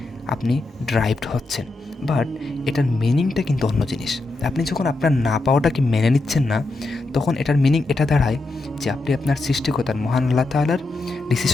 আপনি ড্রাইভড হচ্ছেন, বাট এটার মিনিংটা কিন্তু অন্য জিনিস। আপনি যখন আপনার না পাওয়াটাকে মেনে নিচ্ছেন না, তখন এটার মিনিং এটা দাঁড়ায় যে আপনি আপনার সৃষ্টিকর্তার, মহান আল্লাহ তাআলার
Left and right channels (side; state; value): right; quieter; 3.0 dB